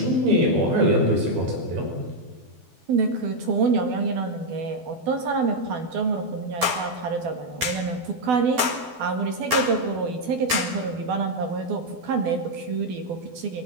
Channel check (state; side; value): late; left; 12 ms